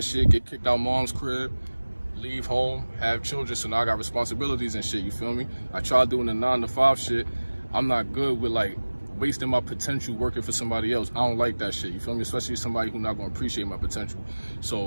shit, get kicked out mom's crib, leave home, have children, so now I got responsibilities and shit, you feel me? I tried doing the 9-to-5 shit. I'm not good with like wasting my potential working for somebody else. I don't like that shit, you feel me? Especially somebody who's not gonna appreciate my potential.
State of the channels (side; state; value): both; inverted; correlation -1.00